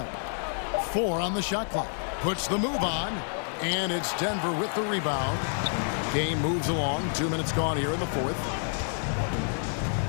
4 on the shot clock. Puts the move on, and it's Denver with the rebound. Game moves along. 2 minutes gone here in the fourth.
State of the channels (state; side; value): silent; right; 59 dB below the other